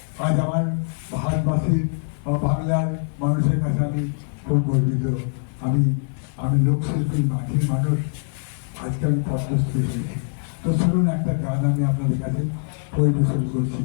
আজ আমার ভারতবাসীর বা বাংলার মানুষের কাছে আমি খুব গর্বিত। আমি লোকশিল্পী, মাটির মানুষ, আজকে আমি পদ্মশ্রী হয়েছি। তো শুনুন, একটা গান আমি আপনাদের কাছে পরিবেশন করছি।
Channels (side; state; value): right; silent; 63 dB below the other